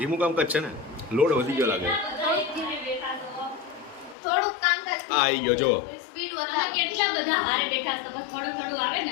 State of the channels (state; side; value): drops out; right; at 4.2 s